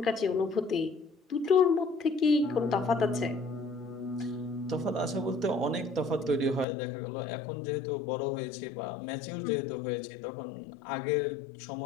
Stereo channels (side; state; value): right; drops out; at 6.7 s